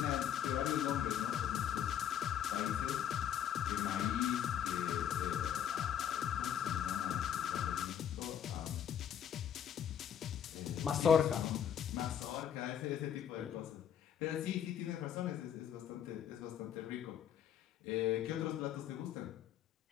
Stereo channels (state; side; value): quieter; right; 9.4 dB